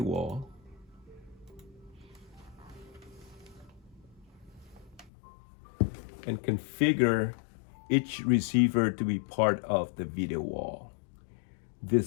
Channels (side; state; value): right; drops out; at 5.1 s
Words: wall. And configure each receiver to be part of the video wall.